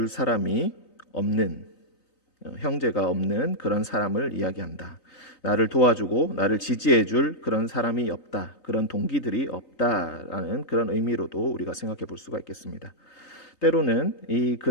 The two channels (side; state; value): right; late; 3.9 ms